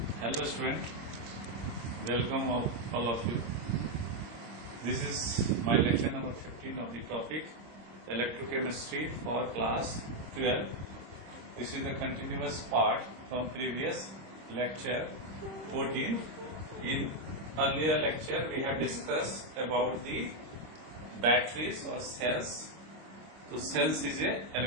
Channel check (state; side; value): late; left; 26 ms